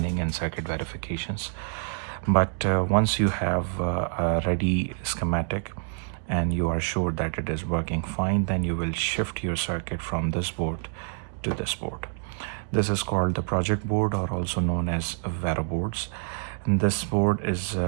and circuit verifications. But once you have a ready schematic and you are sure that it is working fine, then you will shift your circuit from this board to this board. This is called the project board, or also known as Vero boards. And this board is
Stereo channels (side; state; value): left; silent; digital silence